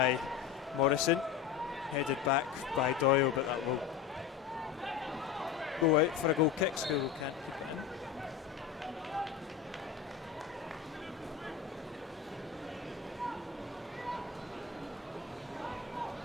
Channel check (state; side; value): quieter; right; 8.1 dB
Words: Morrison, headed back by Doyle, but that will go out for a goal kick. School can't keep it in.